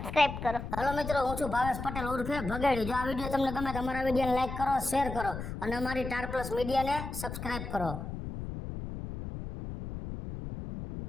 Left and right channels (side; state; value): left; noise; rumble, 7 dB below the sound